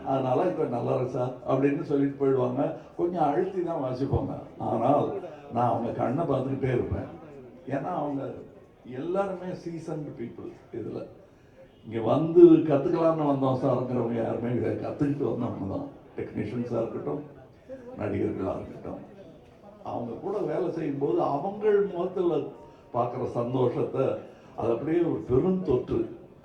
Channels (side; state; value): both; identical; correlation 1.00